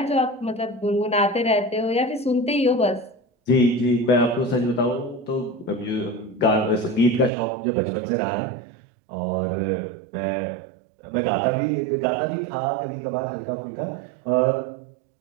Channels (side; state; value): left; drops out; at 7.3 s